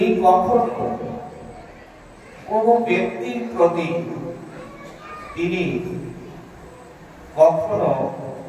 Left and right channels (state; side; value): identical; both; correlation 1.00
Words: কখনো কোন ব্যক্তির প্রতি তিনি কখনো